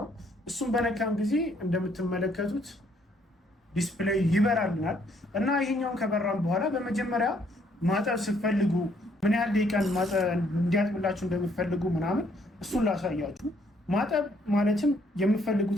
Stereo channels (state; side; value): normal; both; correlation 0.67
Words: እሱም በነካም ጊዜ እንደምትመለከቱት ዲስፕሌይ ይበራልናል እና ይሄኛውን ከበራም በኋላ በመጀመሪያ ማጠብ ስትፈልጉ ምን ያህል ደቂቃን እንዲያጥብላችሁ እንደምትፈልጉ ምናምን እሱን ላሳያችሁ። ማጠብ ማለትም የምትፈልጉት